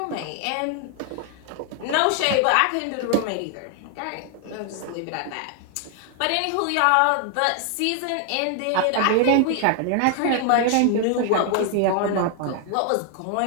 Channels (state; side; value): different; both; correlation 0.00